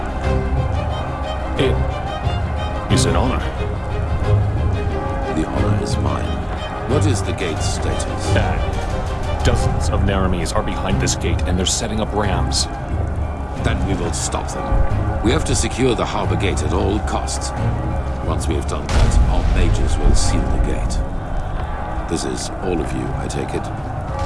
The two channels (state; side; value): identical; both; correlation 1.00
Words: It is an honor. The honor is mine. What is the gate's status? Dozens of nehrimes are behind this gate, and they're setting up rams. Then we will stop them. We have to secure the harbor gate at all costs. Once we have done that, our mages will seal the gate. This is all of you, I take it?